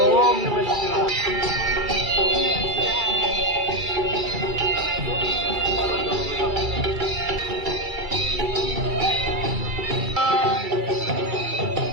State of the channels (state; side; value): late; left; 2.3 ms